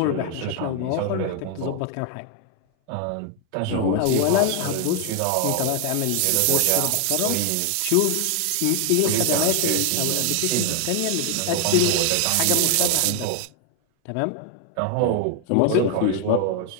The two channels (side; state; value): both; different; correlation 0.01